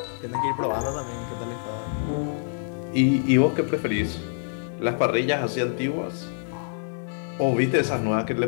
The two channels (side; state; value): right; silent; digital silence